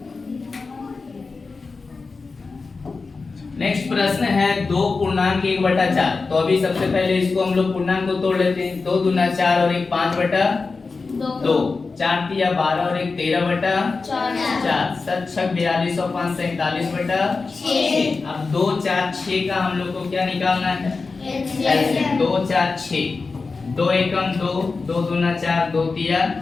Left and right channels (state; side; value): quieter; right; 4.2 dB